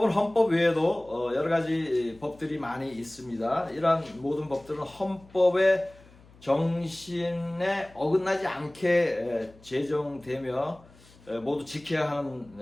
헌법 외에도 여러 가지 법들이 많이 있습니다. 이러한 모든 법들은 헌법의 정신에 어긋나지 않게 제정되며 모두 지켜야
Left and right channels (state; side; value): noise; left; hum, 25 dB below the sound